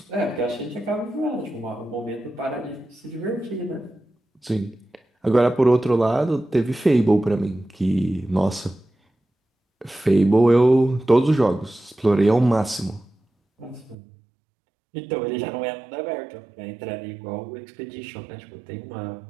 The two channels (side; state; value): left; drops out; at 14.0 s